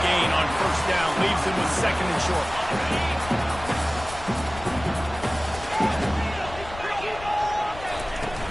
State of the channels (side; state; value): left; noise; rumble, 14 dB below the sound